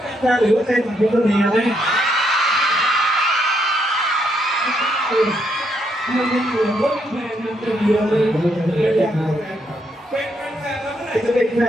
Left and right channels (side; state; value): both; normal; correlation 0.76